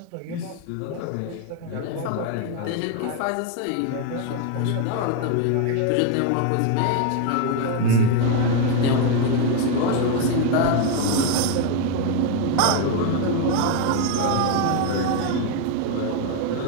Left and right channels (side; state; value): both; different; correlation 0.01